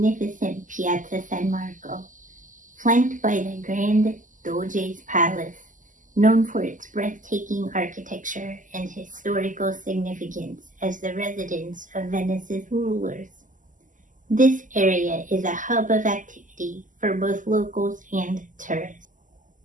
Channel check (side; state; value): left; late; 0.38 ms